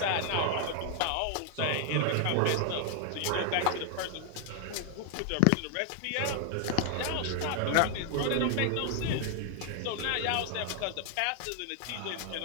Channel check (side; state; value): both; different; correlation 0.00